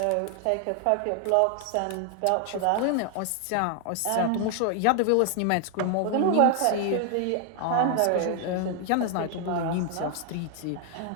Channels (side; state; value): both; different; correlation 0.00